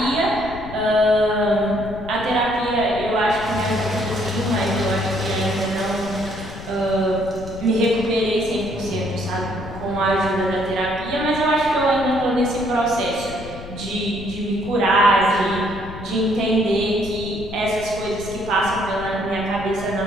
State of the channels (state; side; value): noise; left; rumble, 13 dB below the sound